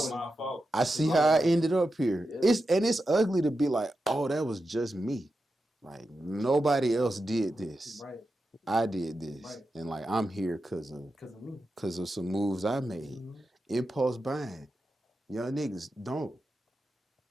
my fault. I see how I ended up here. Yeah. It's ugly to be like, oh, that was just me. Like nobody else did this. Right. I did this, Right. and like I'm here because me. of some moves I made. Impulse buying. Young niggas don't.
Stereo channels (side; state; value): both; normal; correlation 0.90